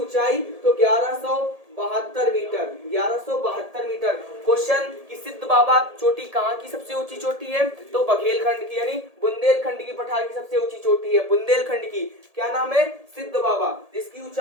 ऊंचाई? तो 1172 मीटर। 1172 मीटर। क्वेश्चन कि सिद्ध बाबा चोटी कहाँ की सबसे ऊंची चोटी है? तो बघेलखंड की, यानी बुंदेलखंड की पठार की सबसे ऊंची चोटी है बुंदेलखंड की। क्या नाम है? सिद्ध बाबा, जिसकी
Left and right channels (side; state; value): left; late; 1.7 ms